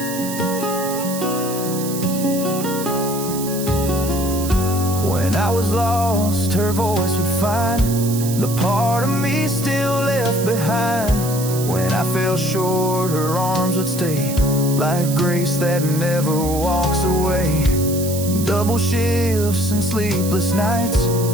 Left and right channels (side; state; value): right; noise; hiss, 9 dB below the sound